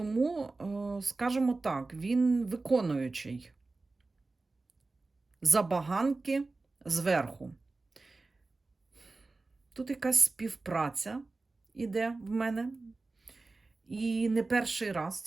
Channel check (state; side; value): quieter; left; 3.5 dB